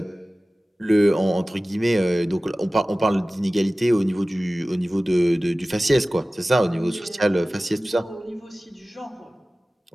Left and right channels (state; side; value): normal; both; correlation 0.97